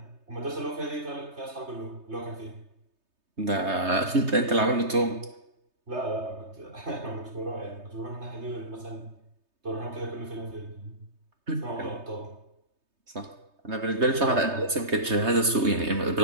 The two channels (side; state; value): left; late; 3.2 ms